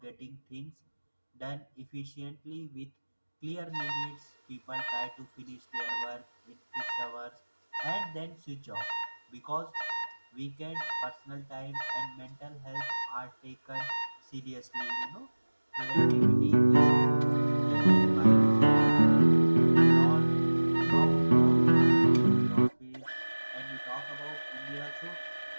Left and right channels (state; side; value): inverted; both; correlation -1.00